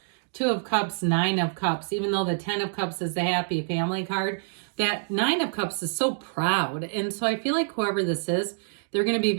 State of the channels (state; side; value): silent; left; digital silence